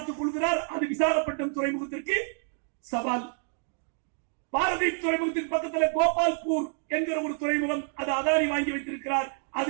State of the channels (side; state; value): left; silent; 59 dB below the other